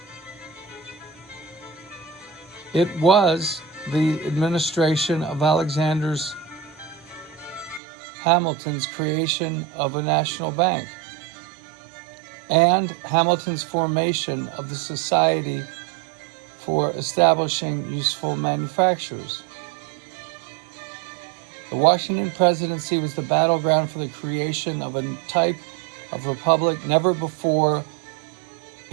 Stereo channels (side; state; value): left; drops out; at 7.8 s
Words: It was the administration of Alexander Hamilton's creation of a national bank and Hamilton's formation of the Society for Establishing Useful Manufactures. The Washington Presidency was the battleground for the creation of a type of republic never before